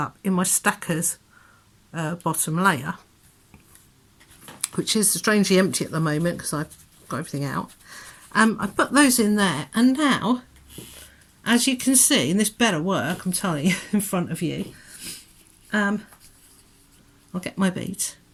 in my stackers bottom layer, which is strangely empty at the moment because I've got everything out. I put those in there, and now, as you can see, and this better work, I'm telling you, in front of you, I'll get my beads.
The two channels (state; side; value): identical; both; correlation 1.00